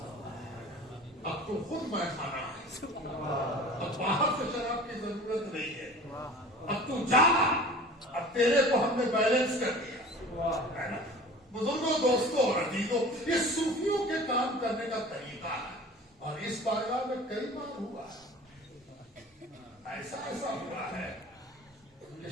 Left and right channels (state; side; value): normal; both; correlation 0.42